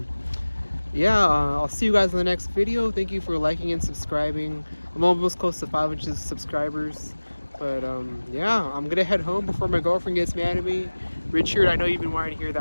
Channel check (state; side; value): inverted; both; correlation -1.00